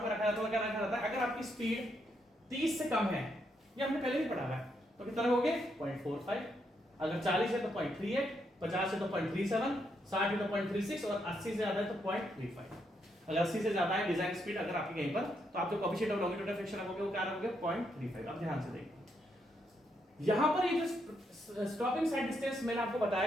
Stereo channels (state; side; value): normal; both; correlation 0.78